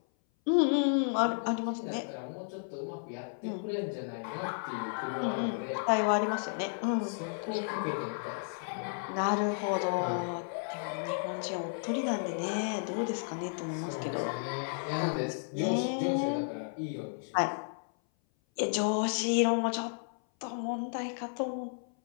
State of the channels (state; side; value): silent; right; 56 dB below the other